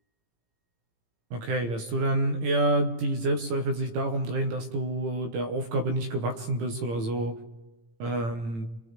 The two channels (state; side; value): late; left; 18 ms